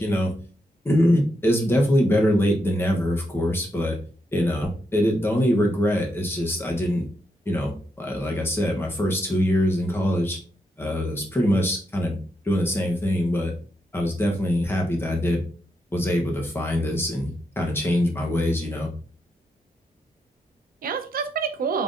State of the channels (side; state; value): both; normal; correlation 0.82